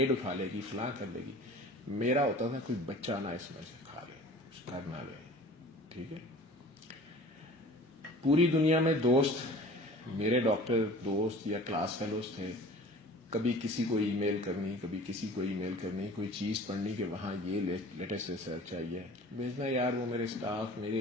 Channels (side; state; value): both; normal; correlation 0.44